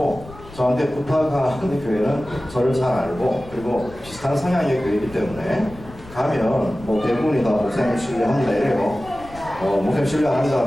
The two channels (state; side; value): noise; left; rumble, 19 dB below the sound